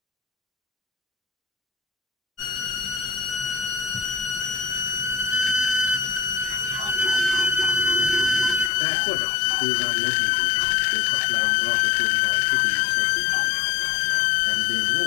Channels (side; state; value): right; drops out; at 8.7 s